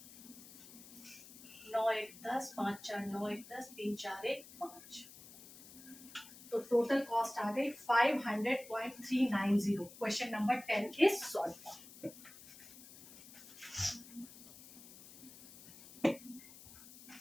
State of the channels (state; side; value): noise; left; hiss, 18 dB below the sound